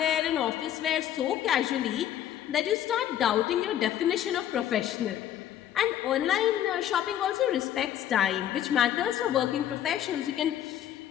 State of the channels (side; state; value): right; quieter; 11.2 dB